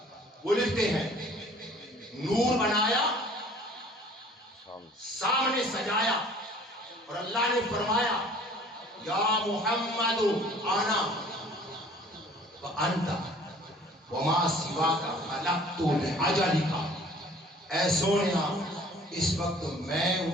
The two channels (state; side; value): normal; both; correlation 0.51